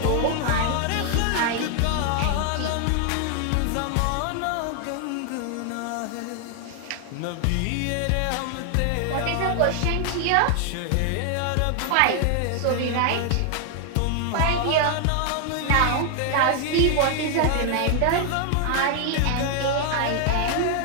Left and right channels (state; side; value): different; both; correlation 0.00